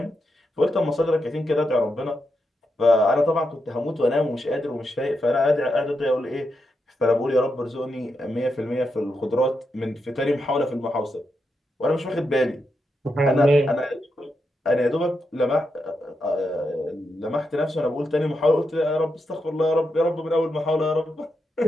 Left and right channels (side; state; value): both; normal; correlation 0.85